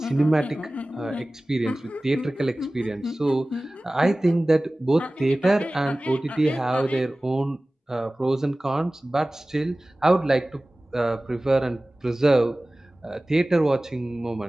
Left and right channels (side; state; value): both; normal; correlation 0.98